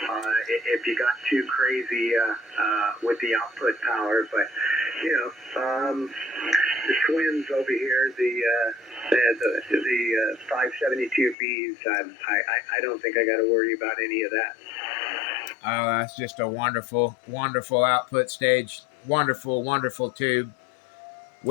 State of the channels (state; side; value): drops out; right; at 11.4 s